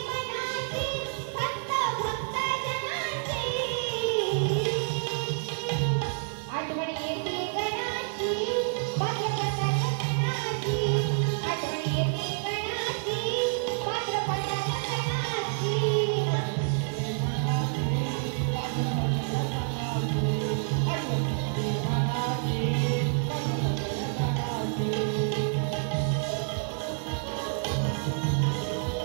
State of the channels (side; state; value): left; silent; 59 dB below the other